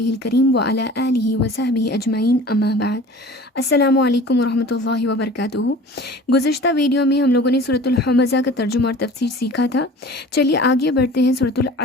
करीम व अला आलिहि व सहबिहि अजमाइन अम्मा बाद। अस्सलामु अलैकुम व रहमतुल्लाहि व बरकातुहू। गुज़िश्ता वीडियो में हम लोगों ने सूरतुल हमज़ा का तर्जुमा और तफसीर सीखा था। चलिए आगे बढ़ते हैं सूरतुल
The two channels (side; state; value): both; normal; correlation 0.43